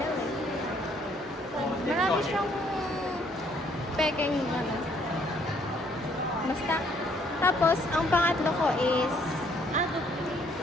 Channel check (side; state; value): both; normal; correlation 0.65